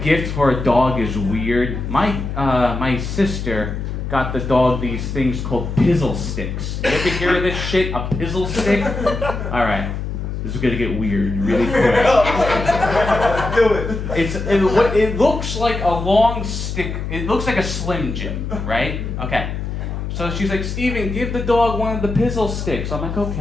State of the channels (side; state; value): left; noise; hum, 5 dB below the sound